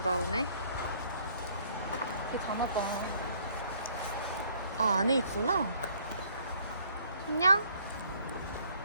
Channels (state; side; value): inverted; both; correlation -0.61